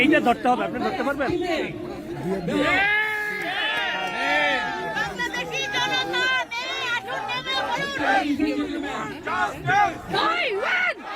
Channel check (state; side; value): identical; both; correlation 1.00